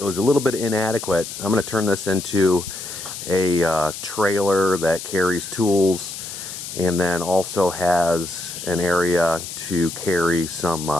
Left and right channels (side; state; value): left; noise; hiss, 9 dB below the sound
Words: was a little bit inadequate. I'm going to turn this into a trailer that carries tools and then also has an area to carry some